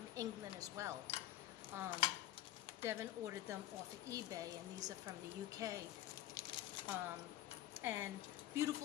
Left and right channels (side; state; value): right; quieter; 14.1 dB